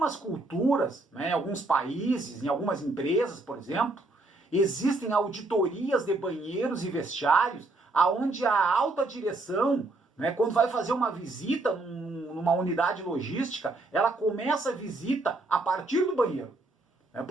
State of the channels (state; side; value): quieter; left; 3.0 dB